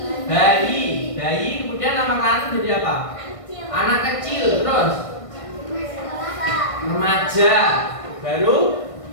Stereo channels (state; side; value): late; right; 1.6 ms